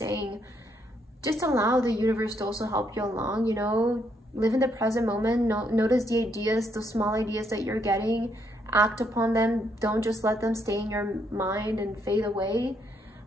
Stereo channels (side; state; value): both; normal; correlation 0.74